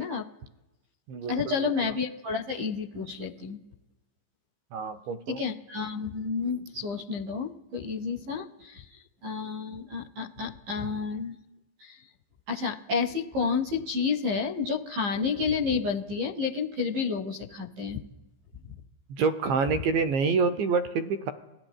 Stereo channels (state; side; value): late; left; 15 ms